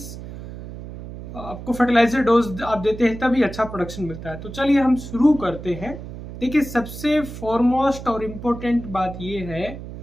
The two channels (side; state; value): right; noise; hum, 11 dB below the sound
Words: आपको फर्टिलाइजर डोज आप देते हैं तभी अच्छा प्रोडक्शन मिलता है। तो चलिए हम शुरू करते हैं। देखिए, सबसे फॉरमोस्ट और इम्पोर्टेंट बात यह है